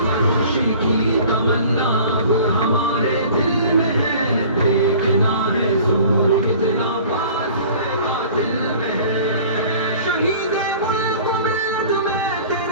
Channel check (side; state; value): both; inverted; correlation -0.46